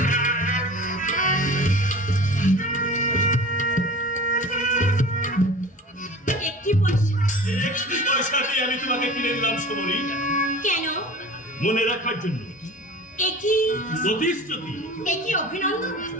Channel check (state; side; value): normal; both; correlation 0.39